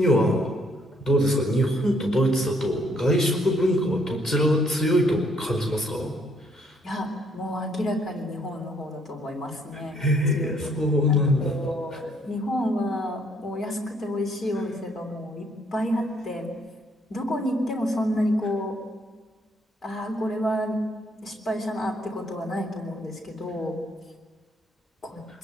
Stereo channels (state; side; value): normal; both; correlation 0.68